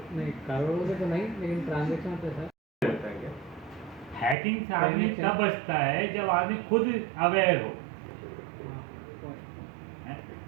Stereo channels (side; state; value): left; drops out; at 4.4 s